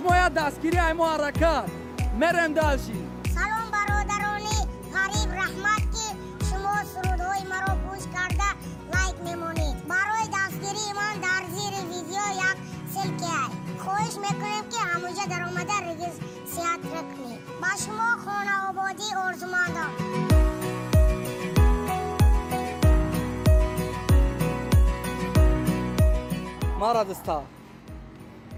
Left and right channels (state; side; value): identical; both; correlation 1.00